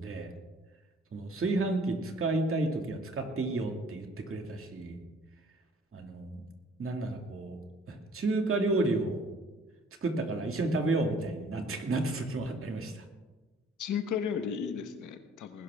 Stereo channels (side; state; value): both; normal; correlation 0.55